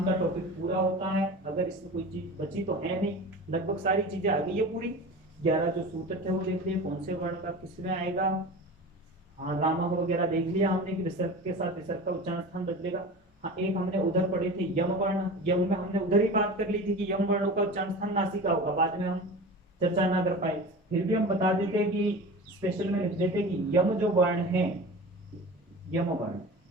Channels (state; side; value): normal; both; correlation 0.33